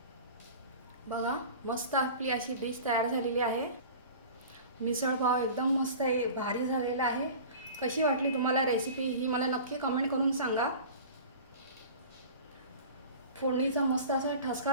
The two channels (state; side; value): inverted; both; correlation -0.38